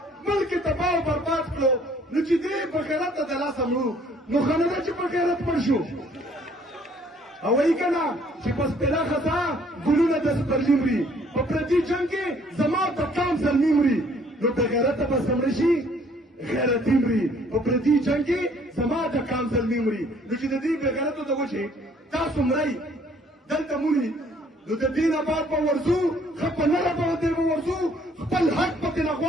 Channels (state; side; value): normal; both; correlation 0.60